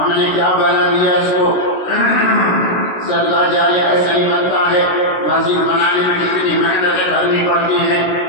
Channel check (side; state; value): right; late; 16 ms